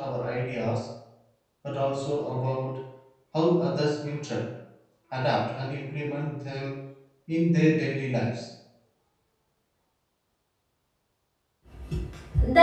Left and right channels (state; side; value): identical; both; correlation 1.00